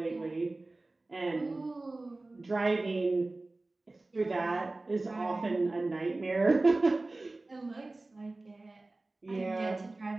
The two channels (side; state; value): left; quieter; 3.1 dB